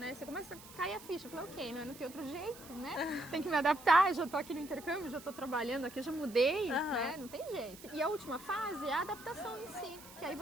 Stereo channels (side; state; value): right; noise; hiss, 18 dB below the sound